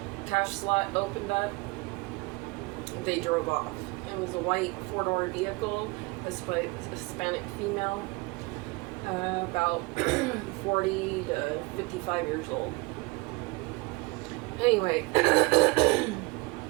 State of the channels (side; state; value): left; quieter; 25.3 dB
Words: cash slot opened up. They drove off. It was a white four-door vehicle, a Hispanic female, about 40 to 55 years old. Anyway,